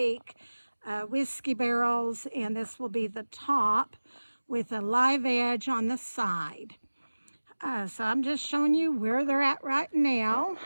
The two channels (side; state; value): both; inverted; correlation -1.00